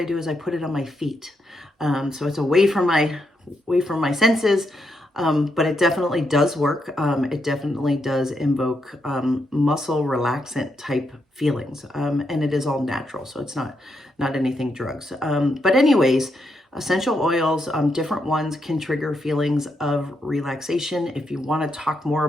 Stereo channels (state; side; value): normal; both; correlation 0.81